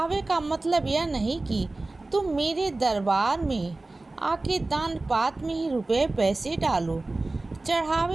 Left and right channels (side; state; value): left; quieter; 3.1 dB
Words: का मतलब यह नहीं कि तुम मेरे दरबार में आके दान पात्र में ही रुपए पैसे डालो।